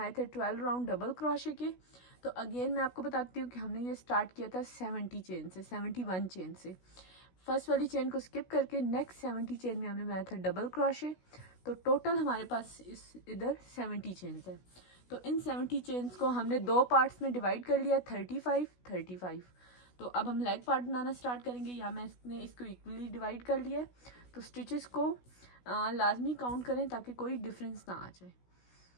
थे 12 राउंड डबल क्रोशे के। तो अगेन मैं आपको बताती हूँ कि हमने ये स्टार्ट किया था 70 चेन से, 71 चेन से। फर्स्ट वाली चेन को स्किप करके नेक्स्ट 70 चेन में हमने बनाया था डबल क्रोशे। तो टोटल हमारे पास इधर 70 चेन्स है। तो इन 70 चेन्स को हमने 2 पार्ट्स में डिवाइड कर लिया, 35 35। तो अब हम लेग पार्ट बनाना स्टार्ट करेंगे। यहाँ मैंने इसको इक्वली डिवाइड कर लिया है। तो स्टिचेस को लाजमी काउंट करें ताकि कोई डिफरेंस ना आ जाए।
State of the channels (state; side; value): late; right; 16 ms